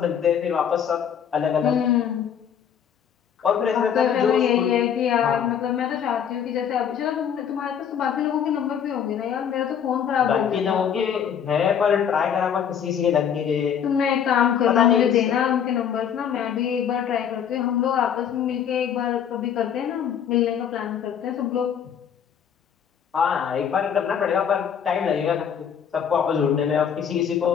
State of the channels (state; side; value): quieter; right; 8.3 dB